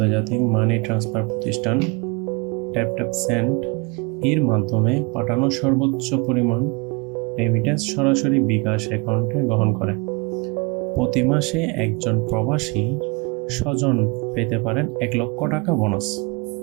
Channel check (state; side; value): quieter; left; 28.8 dB